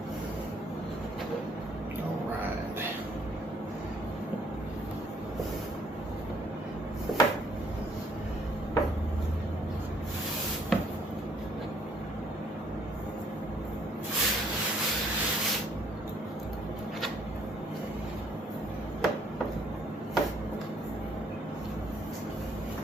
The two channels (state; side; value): normal; both; correlation 0.64